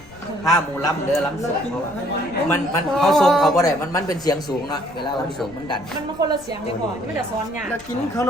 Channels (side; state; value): left; noise; rumble, 22 dB below the sound